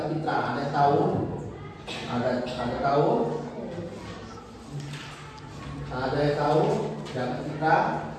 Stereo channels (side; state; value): both; identical; correlation 1.00